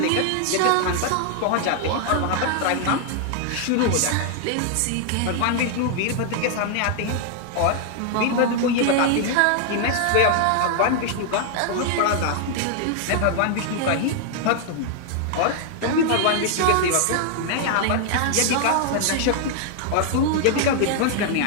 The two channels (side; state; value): both; different; correlation 0.00